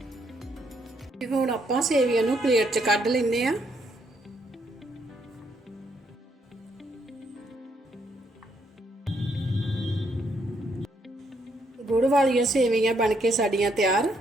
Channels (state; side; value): normal; both; correlation 0.74